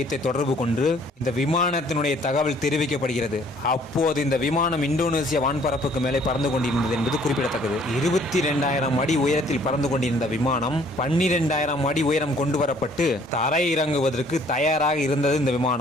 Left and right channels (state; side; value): normal; both; correlation 0.59